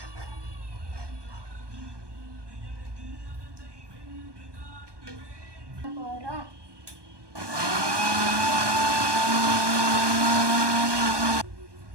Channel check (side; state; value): left; late; 1.2 ms